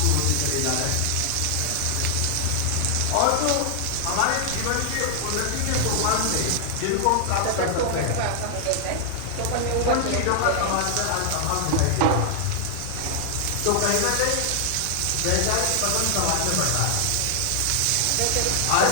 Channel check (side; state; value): both; different; correlation 0.00